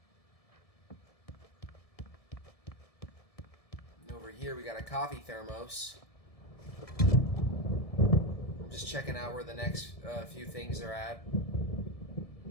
Over here we got a coffee thermos. I'm just checking out where the next few things are at.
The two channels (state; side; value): late; right; 1.7 ms